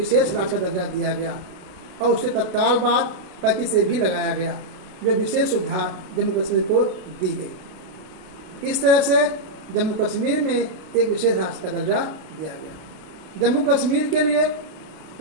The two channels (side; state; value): left; late; 32 ms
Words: राज्य का दर्जा दिया गया और उसके तत्काल बाद 35 से भी लगाया गया, जो विशेष सुविधा जम्मू कश्मीर को दी गई। इस तरह से जम्मू कश्मीर में एक विशेष राज्य का दर्जा दिया गया। जम्मू कश्मीर के लिए